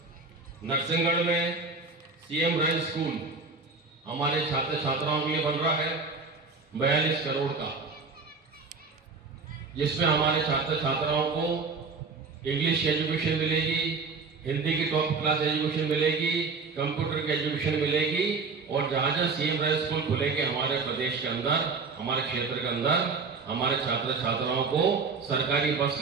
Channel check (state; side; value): quieter; left; 4.4 dB